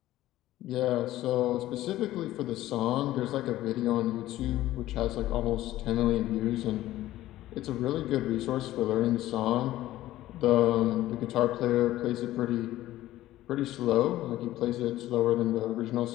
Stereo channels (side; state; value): right; quieter; 15.0 dB